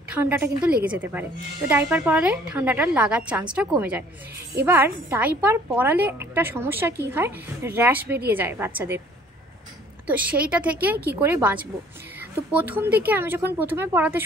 ঠান্ডাটা কিন্তু লেগে যেতে পারে। তো ডাইপার পরালে ঠান্ডাটা লাগার চান্সটা কমে যায়। এবার ডাইপার পরালে একটা সমস্যা কি হয়, র্যাশ বেরিয়ে যায় বাচ্চাদের। তো সেইটা থেকে কি করে বাঁচবো? তো প্রথম দিকে আমি যখন প্রথমে পড়াতে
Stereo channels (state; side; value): normal; both; correlation 0.56